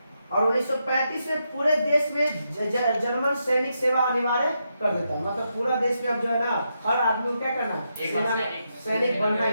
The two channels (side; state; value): both; inverted; correlation -0.83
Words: और 1935 में पूरे देश में जर्मन सैनिक सेवा अनिवार्य कर देता है। मतलब पूरा देश में अब जो है ना हर आदमी को क्या करना है? सैनिक बनना